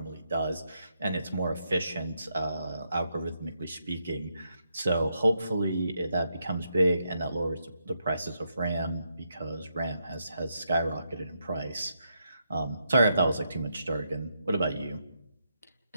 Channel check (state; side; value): inverted; both; correlation -0.81